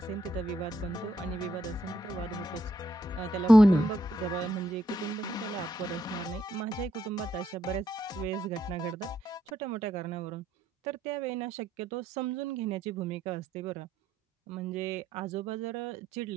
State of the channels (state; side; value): normal; both; correlation 0.77